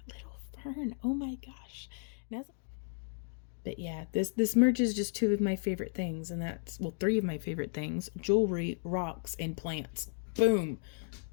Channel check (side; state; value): right; silent; 55 dB below the other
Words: little fern. Oh my gosh. But yeah, this merges just two of my favorite things, and that's, well, three of my favorite things: jewelry, rocks, and plants. Boom.